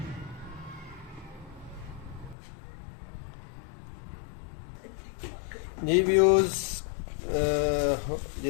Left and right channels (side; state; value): right; drops out; at 2.4 s